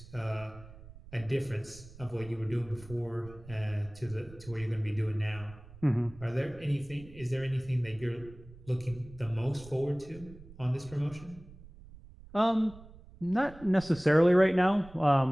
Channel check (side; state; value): right; noise; rumble, 19 dB below the sound